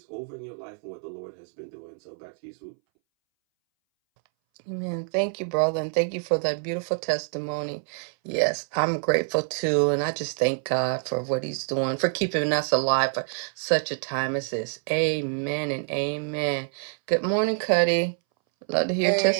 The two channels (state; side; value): silent; left; 61 dB below the other